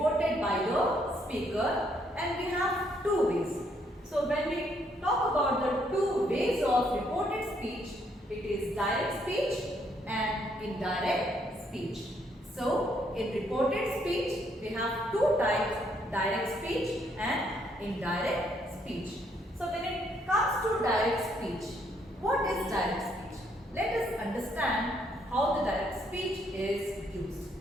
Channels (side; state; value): both; normal; correlation 0.71